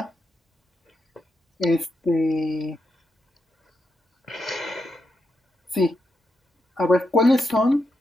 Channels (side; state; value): both; normal; correlation 0.84